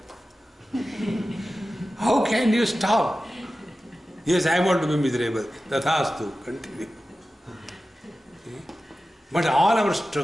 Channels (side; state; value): both; normal; correlation 0.94